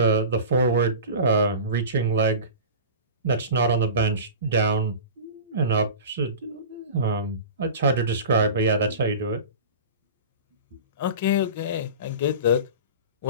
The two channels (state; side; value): inverted; both; correlation -0.34